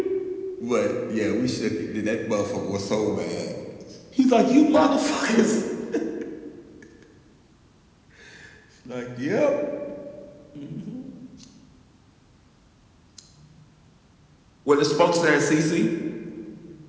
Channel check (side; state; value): both; identical; correlation 1.00